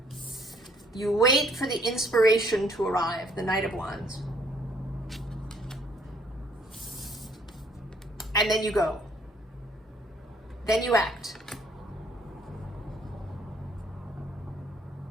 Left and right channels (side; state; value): both; normal; correlation 0.63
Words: You wait for the inspiration to arrive, the Knight of Wands. And then you go. Then you act.